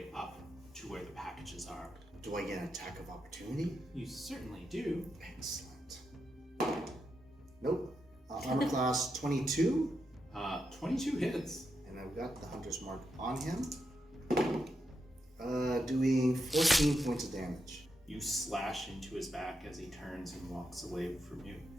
up to where the packages are. Do I get an attack of opportunity? You certainly do. Excellent. Nope. Armor class 22, 22 hits. and I've got the Hunter's Mark on him. Doing 14 points of damage. You slash into his back as he turns and walks away from you.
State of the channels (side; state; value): both; normal; correlation 0.85